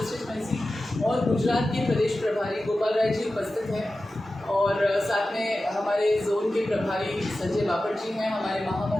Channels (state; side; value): normal; both; correlation 0.94